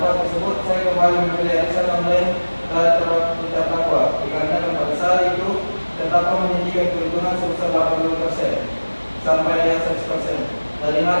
tersebut, saya kembali membeli arisan online dari terdakwa dikarenakan pada saat itu terdakwa menjanjikan keuntungan sebesar 80% sampai dengan 100% dari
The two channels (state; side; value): inverted; both; correlation -1.00